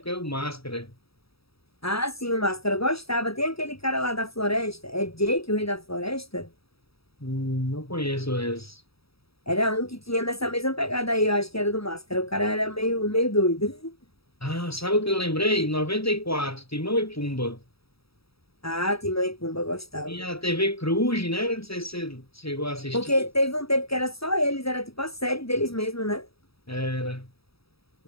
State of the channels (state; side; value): late; right; 0.77 ms